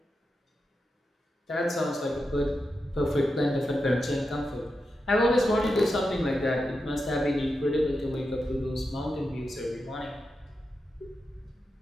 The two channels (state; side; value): normal; both; correlation 0.89